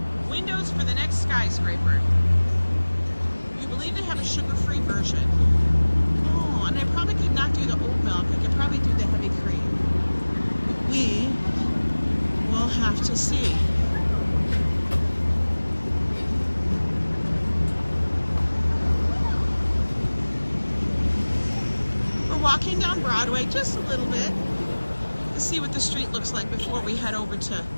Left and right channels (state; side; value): inverted; both; correlation -1.00